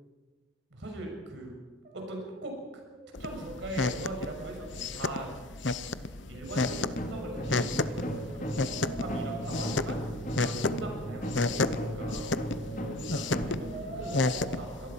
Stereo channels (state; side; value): normal; both; correlation 0.40